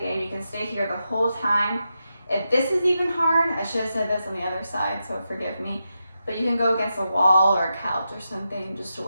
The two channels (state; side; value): inverted; both; correlation -0.88